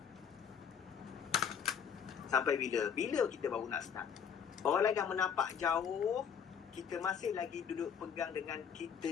Sampai bila? Bila kita baru nak start? Orang lain dah menapak jauh, kita masih lagi duduk pegang dengan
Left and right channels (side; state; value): right; quieter; 7.5 dB